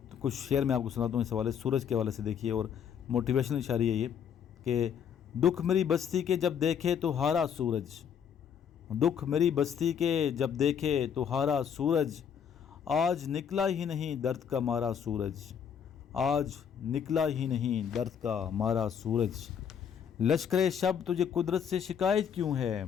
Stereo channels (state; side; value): quieter; right; 7.9 dB